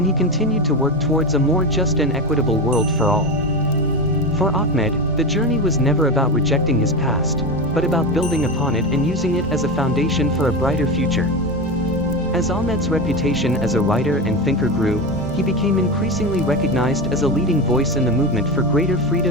he continued to work towards a more just and equitable world for all. For Ahmed, the journey was never about rejecting his past, but about building upon it and using it as a foundation for a brighter future. As Ahmed's reputation as a writer and thinker grew, he became increasingly recognized as a leading voice in the movement for greater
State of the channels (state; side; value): normal; both; correlation 0.20